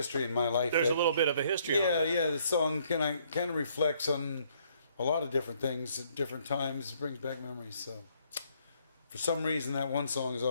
in my life. There's that, a little bit of a history. Yeah, on it. yeah. The song kind of reflects on a lot of different things at different times. It brings back memories. So, for some reason, that one song has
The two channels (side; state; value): both; inverted; correlation -0.67